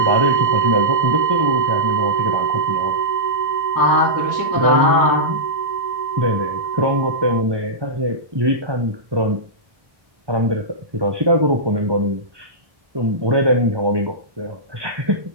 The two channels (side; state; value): left; late; 1.2 ms